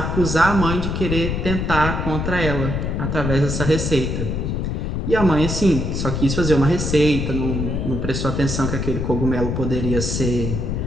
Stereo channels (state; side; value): noise; left; rumble, 1 dB below the sound